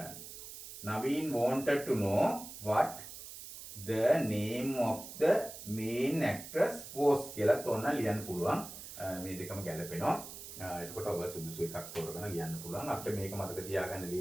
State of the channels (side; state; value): right; noise; hiss, 12 dB below the sound